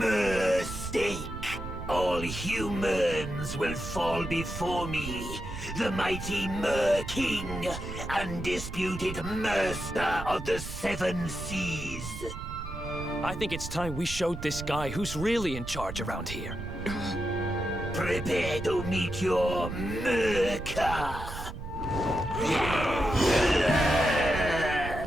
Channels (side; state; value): right; noise; rumble, 9 dB below the sound